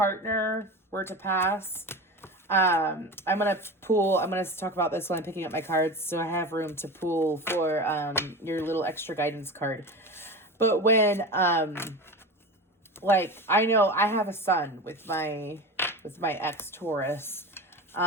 were to pass, I'm going to talk about this when I'm picking up my cards, so I have room to pull for your little extra guidance card. But when I know I have a son with my ex Taurus,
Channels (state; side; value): normal; both; correlation 0.28